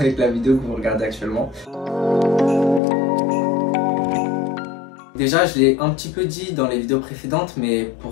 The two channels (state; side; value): drops out; right; at 2.8 s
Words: la vidéo que vous regardez actuellement. Déjà, je l'ai un petit peu dit dans les vidéos précédentes, mais